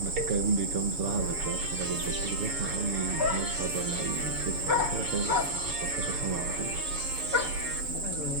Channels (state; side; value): late; left; 6.9 ms